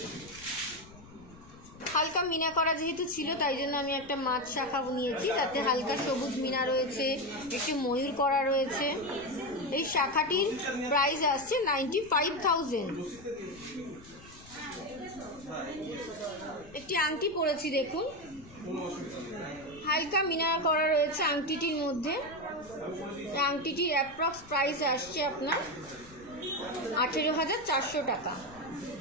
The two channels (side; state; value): left; noise; rumble, 21 dB below the sound